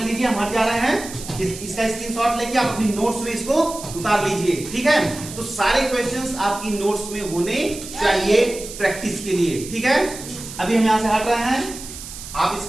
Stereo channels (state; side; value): noise; right; hiss, 12 dB below the sound